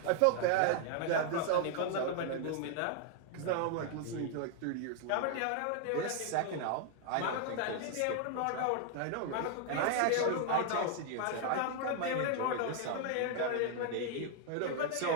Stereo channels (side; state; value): both; different; correlation 0.00